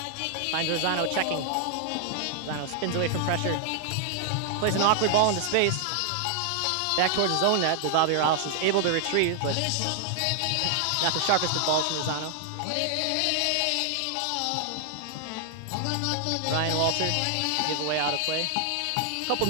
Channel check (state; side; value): different; both; correlation 0.00